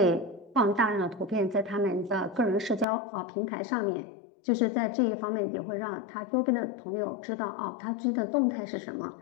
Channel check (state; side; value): drops out; right; at 2.9 s